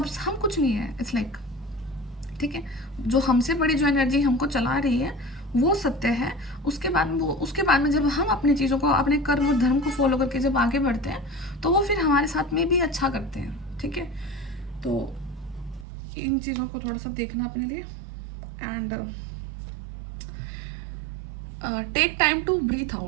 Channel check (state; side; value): drops out; left; at 15.9 s